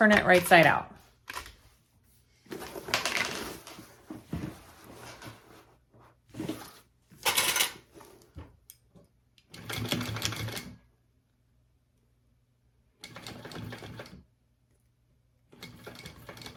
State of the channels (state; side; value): identical; both; correlation 1.00